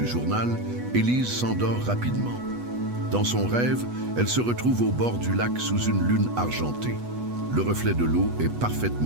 journal, Élise s'endort rapidement. Dans son rêve, elle se retrouve au bord du lac sous une lune argentée. Le reflet de l'eau est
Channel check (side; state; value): left; late; 8.2 ms